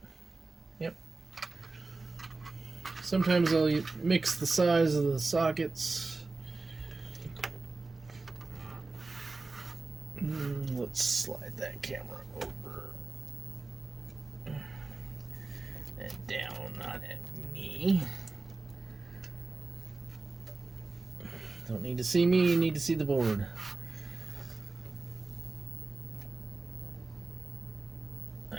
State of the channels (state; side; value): quieter; left; 3.7 dB